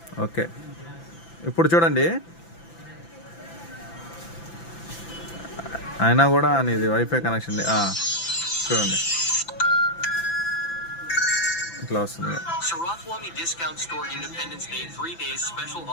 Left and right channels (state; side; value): late; right; 5.9 ms